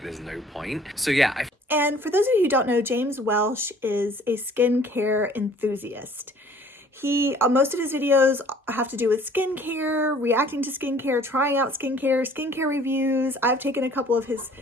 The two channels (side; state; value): both; normal; correlation 0.54